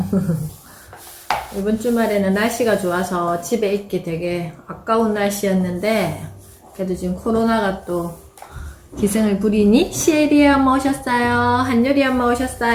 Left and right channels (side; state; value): both; identical; correlation 1.00